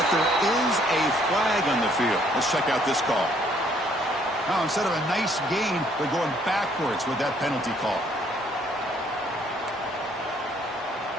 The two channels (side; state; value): both; normal; correlation 0.65